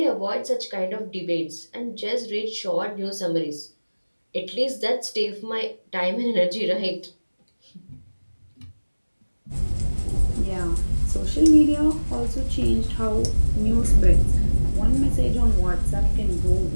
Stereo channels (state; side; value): inverted; both; correlation -1.00